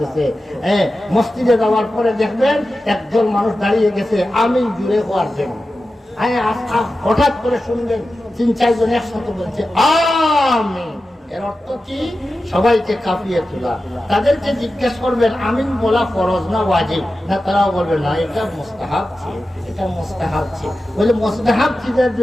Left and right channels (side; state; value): both; normal; correlation 0.93